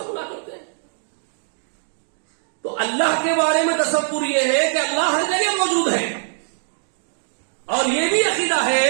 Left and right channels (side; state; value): left; silent; digital silence